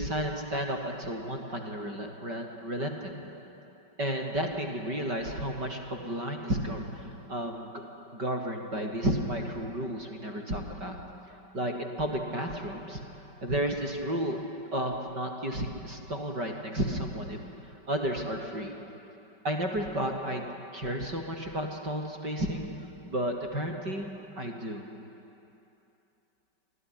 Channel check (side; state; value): left; late; 5.2 ms